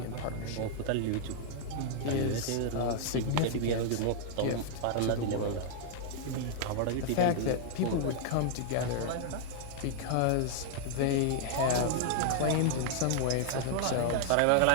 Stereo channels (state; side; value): different; both; correlation -0.01